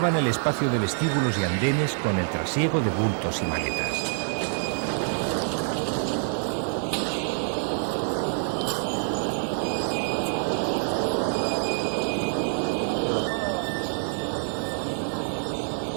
el espacio de vestíbulos y andenes con el trasiego de bultos y maletas.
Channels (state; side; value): silent; left; digital silence